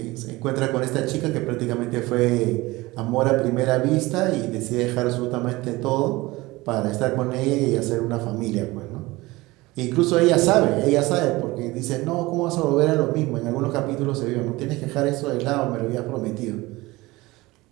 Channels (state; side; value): quieter; left; 20.7 dB